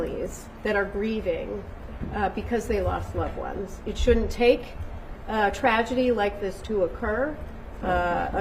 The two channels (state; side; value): identical; both; correlation 1.00